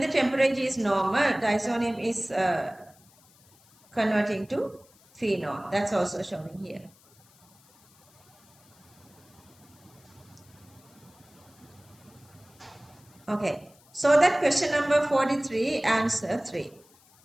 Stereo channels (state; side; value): noise; left; hiss, 29 dB below the sound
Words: temperature is normal, diazonium is converting to phenol. That's also showing here. Okay, so that question number 43, answer 3.